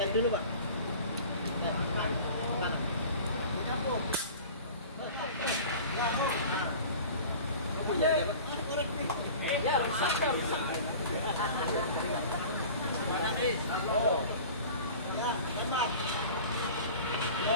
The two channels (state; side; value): inverted; both; correlation -0.40